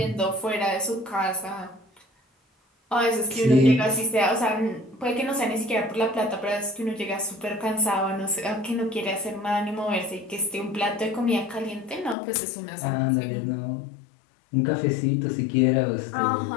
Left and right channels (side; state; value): right; drops out; at 12.2 s